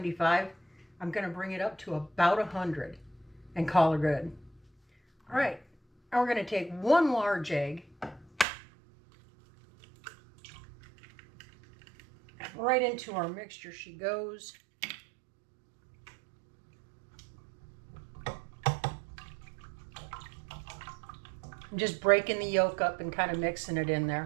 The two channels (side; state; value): left; drops out; at 8.5 s